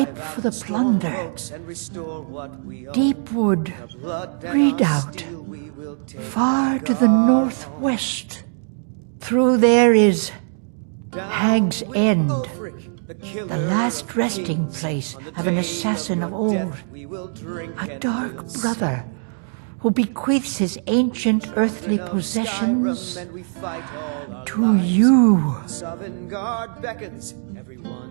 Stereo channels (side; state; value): left; silent; digital silence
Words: for the plunder. Deep wood, redoubt, far to the northwest. Through there is Hag's End, the last resting place of an assassin of old, a dark brother who bequeaths his ancient earthly possessions to you.